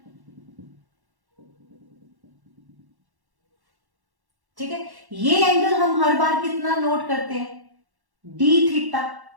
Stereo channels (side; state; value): left; late; 1.1 ms